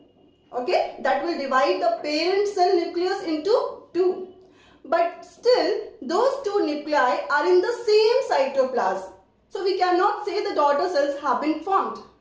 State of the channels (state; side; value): identical; both; correlation 1.00